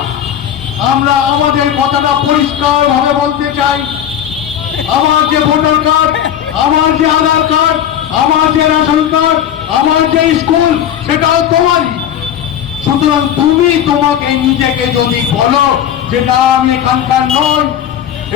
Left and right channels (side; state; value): right; quieter; 10.0 dB